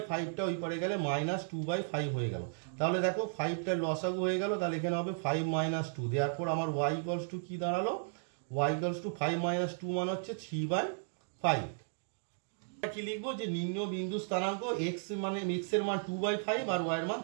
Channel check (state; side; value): silent; left; digital silence